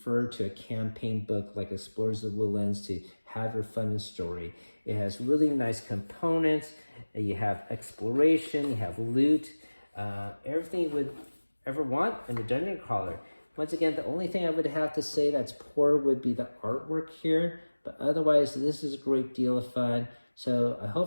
to a campaign book like Explorers of the Woodlands to have your fun and story. It has really nice components. You have exploration, you have loot, everything you would ever want in a dungeon crawler. Once again, the only thing I would have to say that's poor would be the artwork here, but otherwise this is a great deal of fun. So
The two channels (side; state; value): both; inverted; correlation -1.00